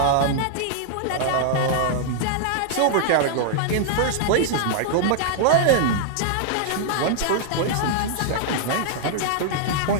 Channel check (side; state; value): both; different; correlation -0.01